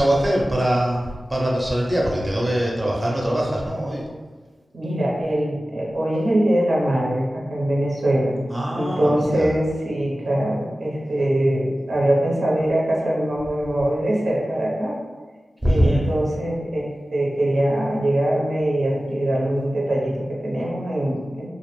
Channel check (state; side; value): normal; both; correlation 0.95